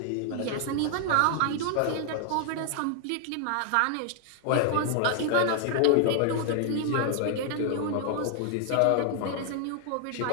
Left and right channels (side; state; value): both; different; correlation 0.00